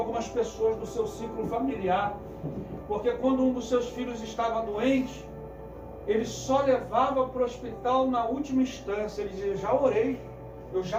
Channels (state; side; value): identical; both; correlation 1.00